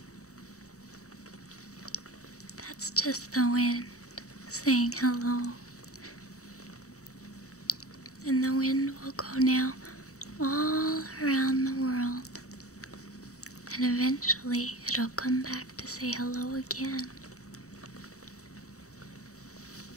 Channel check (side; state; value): right; late; 0.65 ms